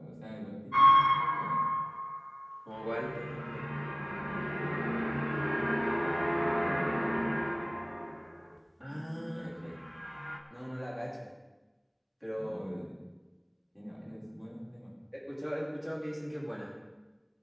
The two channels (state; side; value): identical; both; correlation 1.00